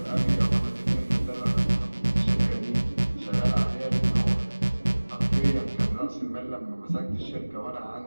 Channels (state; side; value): inverted; both; correlation -1.00